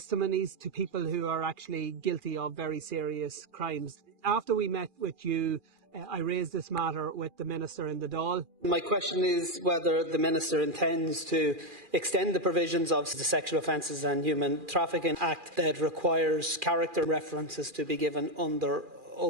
to people who are actually guilty of very serious crimes. After we met with you, I raised this matter with the Minister in the Dáil. My question is whether the Minister intends to extend the provisions of the Sexual Offences and Human Trafficking Act that requires character references to be given under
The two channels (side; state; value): left; late; 2.4 ms